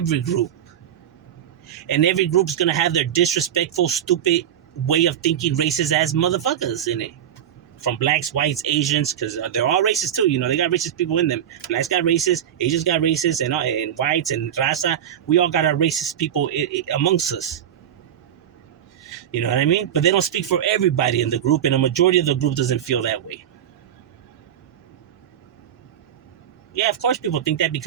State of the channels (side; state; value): left; quieter; 10.0 dB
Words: group. And every group's going to have their disrespectful, stupid way of thinking, racist ass motherfuckers in it. From blacks, whites, Asians, because they're all racist too. They got racist people in them. Blacks got racist, Asians got racist, and whites and raza. We all got our racist people amongst us. You know what I mean? But they don't speak for everybody in the group, and a majority of the group doesn't feel that way. Yeah, of course people think that